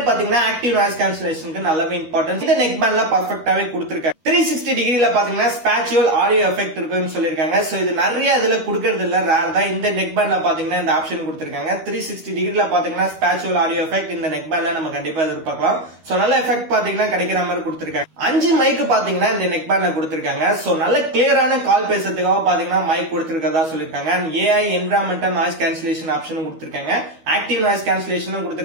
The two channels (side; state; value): left; late; 13 ms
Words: பாத்தீங்கன்னா ஆக்டிவ் நாய்ஸ் கேன்சலேஷனுக்கு நல்லாவே இம்பார்ட்டன்ஸ் இந்த நெக் பேண்ட்ல பர்ஃபெக்ட்டாவே கொடுத்திருக்காங்க. 360 டிகிரில பாத்தீங்கன்னா ஸ்பேச்சுவல் ஆடியோ எஃபெக்ட் இருக்குன்னு சொல்லிருக்காங்க. சோ இது நிறைய இதுல கொடுக்கறது இல்ல, ரேர் தான். இந்த நெக் பேண்ட்ல பாத்தீங்கன்னா இந்த ஆப்ஷன் கொடுத்திருக்காங்க. 360 டிகிரில பாத்தீங்கன்னா ஸ்பேச்சுவல் ஆடியோ எஃபெக்ட் இந்த நெக் பேண்ட்ல நம்ம கண்டிப்பா எதிர்பார்க்கலாம். சோ நல்ல எஃபெக்ட் பாத்தீங்கன்னா கிடைக்கிற மாதிரி கொடுத்திருக்காங்க. 5 மைக் பாத்தீங்கன்னா இந்த நெக் பேண்ட்ல கொடுத்திருக்காங்க. சோ நல்ல கிளியரான கால் பேசுறதுக்காக பாத்தீங்கன்னா மைக் கொடுத்திருக்கதா சொல்லிருக்காங்க. And AI environmental noise cancellation ஆப்ஷனும் கொடுத்திருக்காங்க. ஆக்டிவ் நாய்ஸ் கேன்சலேஷனும்